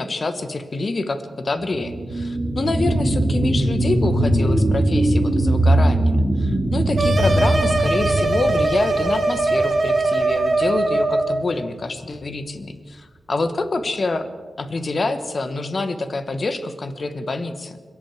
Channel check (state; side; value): normal; both; correlation 0.91